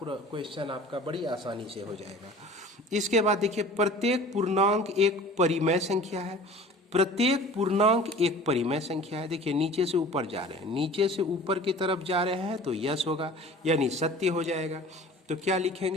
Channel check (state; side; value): normal; both; correlation 0.43